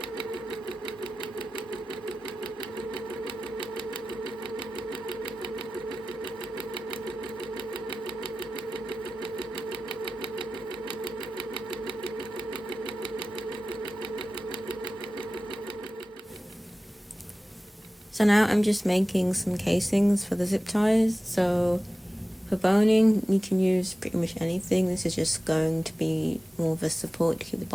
So now I'm just making some casings for the zip ties. So for boning, you can use pretty much anything. This is just going to be more of a support to keep the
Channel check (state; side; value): normal; both; correlation 0.96